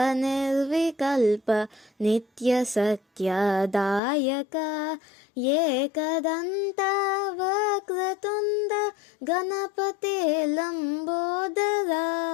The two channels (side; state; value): right; drops out; at 4.0 s